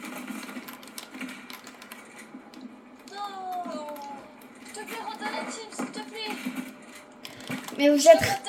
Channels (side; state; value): both; identical; correlation 1.00